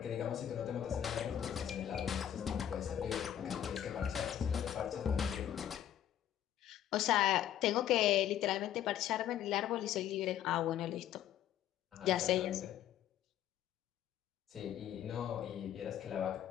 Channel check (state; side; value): quieter; right; 10.8 dB